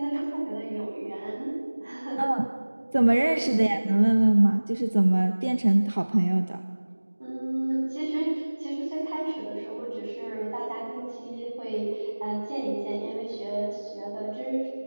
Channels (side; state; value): both; inverted; correlation -1.00